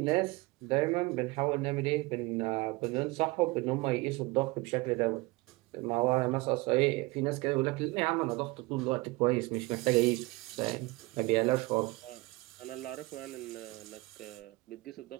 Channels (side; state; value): left; quieter; 23.4 dB